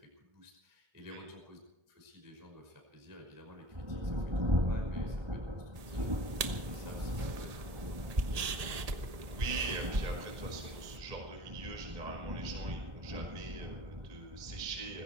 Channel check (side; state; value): left; late; 1.7 ms